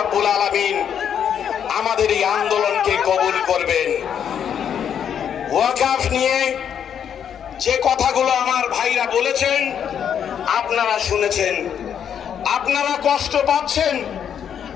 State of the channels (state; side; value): quieter; right; 8.5 dB